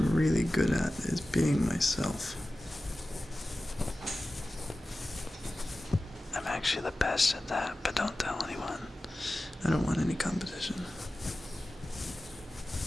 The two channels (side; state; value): both; normal; correlation 0.95